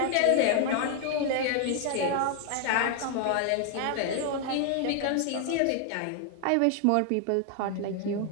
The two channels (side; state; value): both; different; correlation 0.00